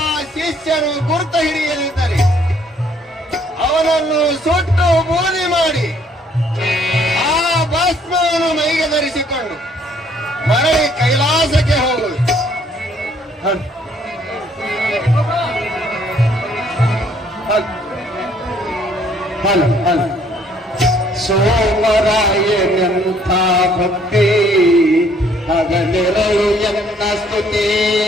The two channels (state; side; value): normal; both; correlation 0.64